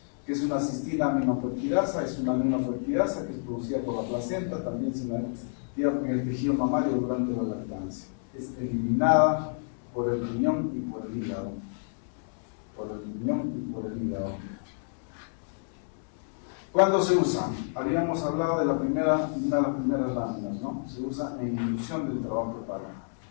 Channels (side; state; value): right; silent; digital silence